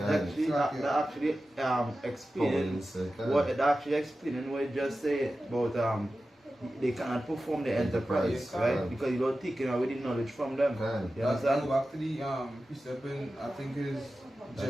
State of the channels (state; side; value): normal; both; correlation 0.94